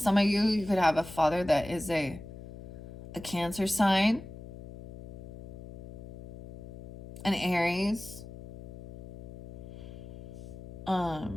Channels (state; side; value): noise; left; hum, 14 dB below the sound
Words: of you, you could have a father that is a Cancer sign, an Aries,